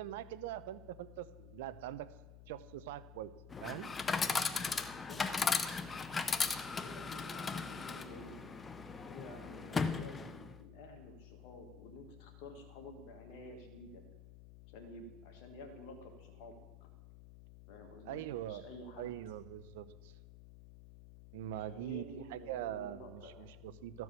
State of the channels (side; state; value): left; noise; hum, 15 dB below the sound